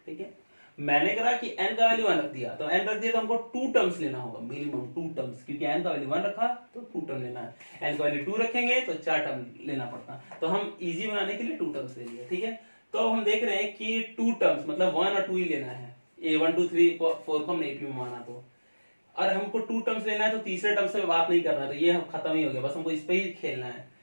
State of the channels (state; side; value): inverted; both; correlation -1.00